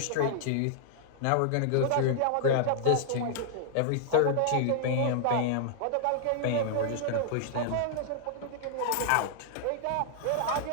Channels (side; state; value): both; different; correlation -0.01